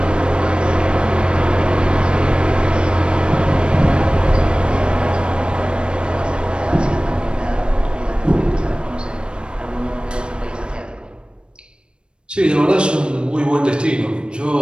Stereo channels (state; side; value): late; left; 0.055 ms